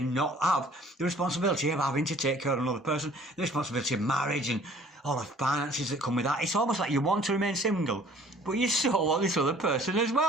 not have the responsibility of having to take care of another person, the responsibility of marriage and all the finances that come with that. It's almost like you want to remain single, but you still want this other person as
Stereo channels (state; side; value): normal; both; correlation 0.54